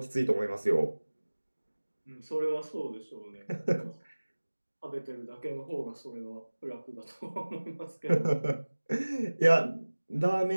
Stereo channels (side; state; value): both; inverted; correlation -1.00